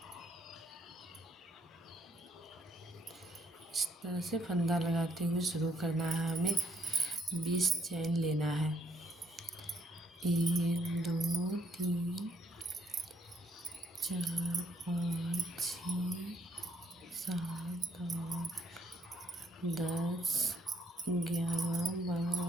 इस तरह से फंदा लगाते हुए शुरू करना है। हमें 20 चैन लेना है। 1 2 3 4 5 6 7 8 10 11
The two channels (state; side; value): normal; both; correlation 0.71